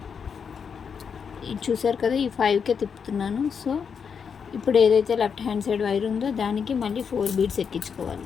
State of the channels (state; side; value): quieter; right; 6.5 dB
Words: చూసారు కదా, ఈ 5కే తిప్పుతున్నాను. సో ఇప్పుడు ఏదైతే లెఫ్ట్ హ్యాండ్ సైడ్ వైర్ ఉందో దానికి మళ్ళీ 4 బీడ్స్